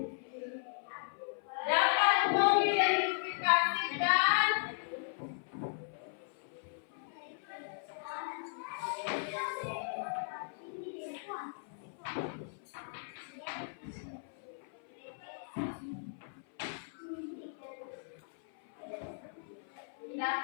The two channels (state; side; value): silent; right; 53 dB below the other